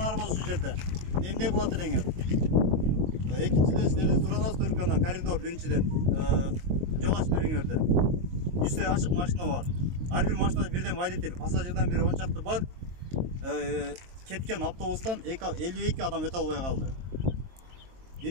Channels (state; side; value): late; left; 23 ms